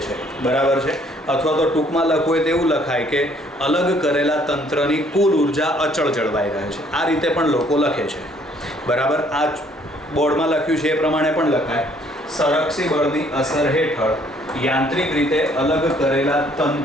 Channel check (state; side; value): normal; both; correlation 0.62